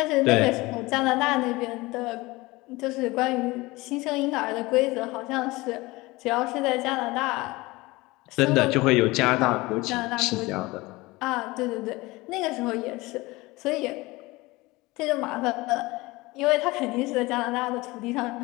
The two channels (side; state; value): right; quieter; 21.6 dB